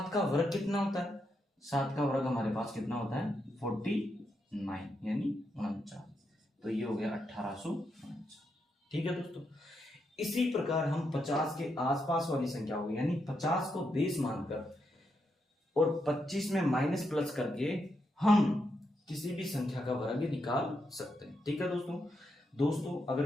का वर्ग कितना होता है, 7 का वर्ग हमारे पास कितना होता है 49, यानी 49, तो ये हो गया 1849, ठीक है दोस्तों। इसी प्रकार हम 50 के आसपास वाली संख्या होगी, यानी 50 को बेस मानकर और 25 में माइनस प्लस करके हम किसी भी संख्या का वर्ग निकाल सकते हैं, ठीक है दोस्तों।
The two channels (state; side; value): normal; both; correlation 0.82